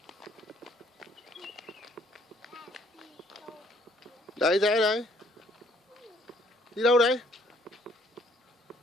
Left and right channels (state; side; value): normal; both; correlation 0.63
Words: Đấy rẽ đấy. Đi đâu đấy?